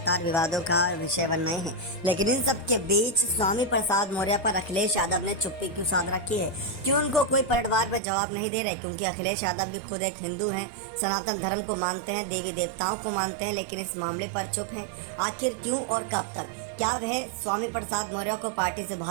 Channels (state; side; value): drops out; left; at 8.0 s